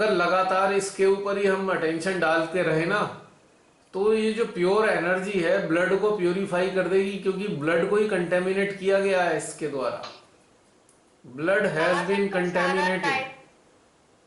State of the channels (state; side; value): identical; both; correlation 1.00